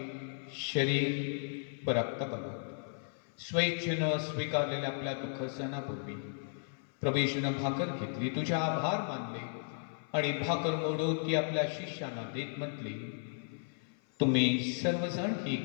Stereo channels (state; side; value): silent; right; 55 dB below the other